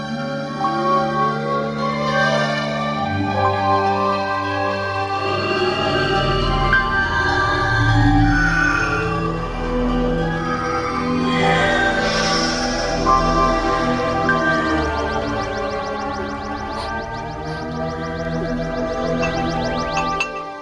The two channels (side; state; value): both; identical; correlation 1.00